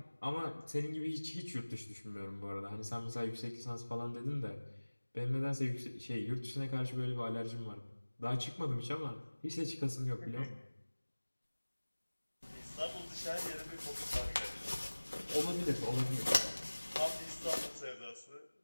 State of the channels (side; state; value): both; inverted; correlation -1.00